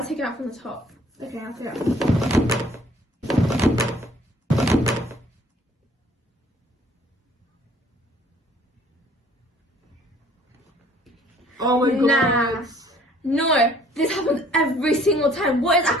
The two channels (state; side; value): normal; both; correlation 0.57